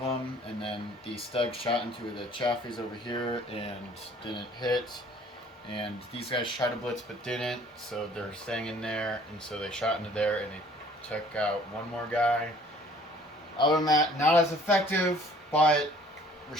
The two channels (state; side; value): normal; both; correlation 0.55